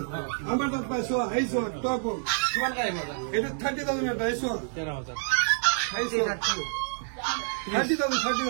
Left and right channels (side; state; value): left; silent; digital silence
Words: আমাৰ তাত পাইছো এই সো টয় বল কিমান লাগিব এটা 30,000 এটা এই সো 13,000 এই সো